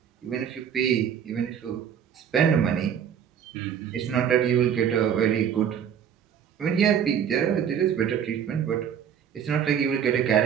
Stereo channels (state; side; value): quieter; left; 8.5 dB